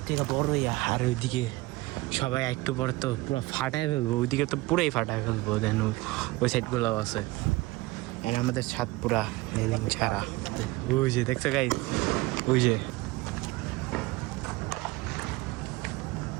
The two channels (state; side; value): quieter; left; 21.2 dB